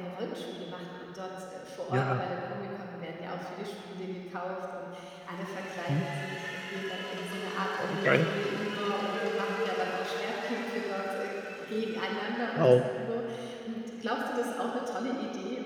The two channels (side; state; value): both; identical; correlation 1.00